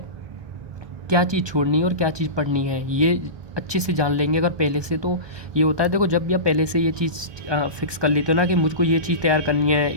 क्या चीज़ छोड़नी है और क्या चीज़ पढ़नी है, ये अच्छे से जान लेंगे अगर पहले से। तो ये होता है, देखो जब भी आप पहले से ये चीज़ फिक्स कर लेते हो ना कि मुझको ये चीज़ तैयार करनी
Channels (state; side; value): late; left; 1.2 ms